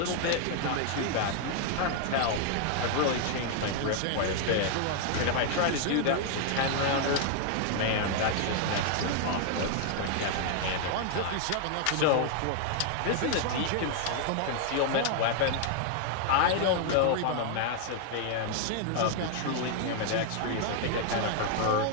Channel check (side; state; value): both; different; correlation 0.00